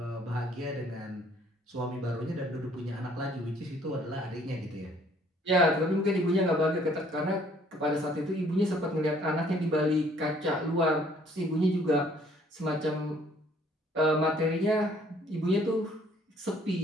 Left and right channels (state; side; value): normal; both; correlation 0.60